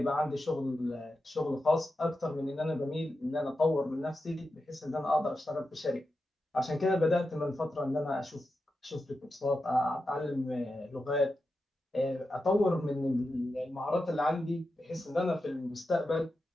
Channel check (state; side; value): normal; both; correlation 0.90